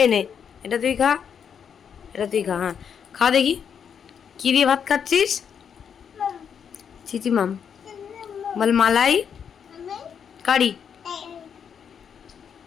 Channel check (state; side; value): quieter; right; 7.5 dB